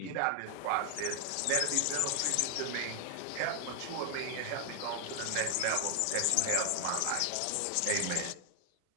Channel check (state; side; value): different; both; correlation 0.00